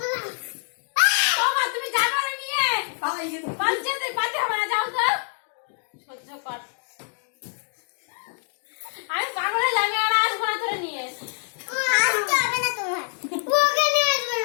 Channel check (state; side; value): silent; right; digital silence